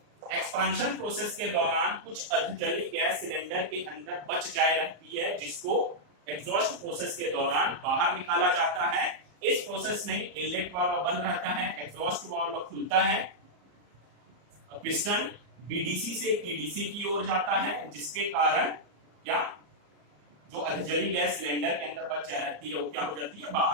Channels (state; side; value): late; left; 34 ms